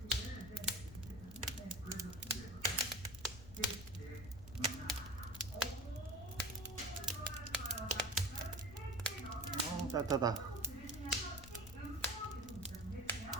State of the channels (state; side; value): noise; left; rumble, 14 dB below the sound